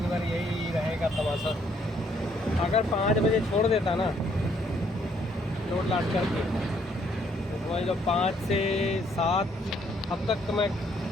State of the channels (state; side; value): normal; both; correlation 0.68